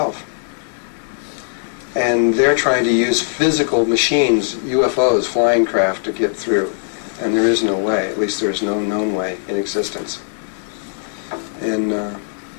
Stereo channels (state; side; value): silent; right; digital silence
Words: And they're trying to use physical machines, UFOs, flying craft, to get through. And there is no way, at least there is no known way in existence.